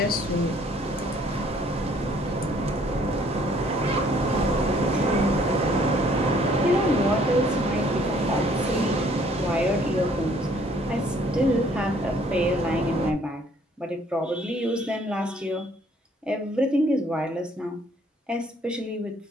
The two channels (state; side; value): normal; both; correlation 0.61